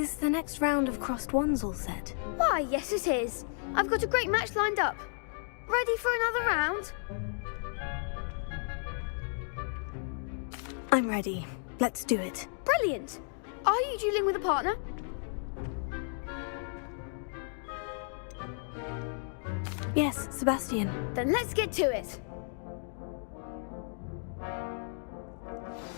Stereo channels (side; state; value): right; silent; 56 dB below the other